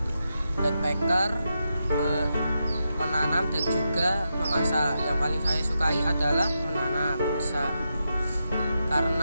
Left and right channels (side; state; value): both; inverted; correlation -0.86